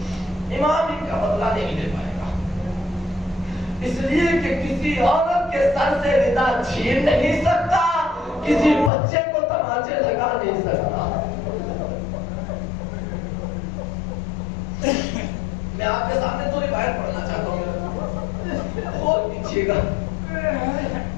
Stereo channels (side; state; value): right; drops out; at 8.9 s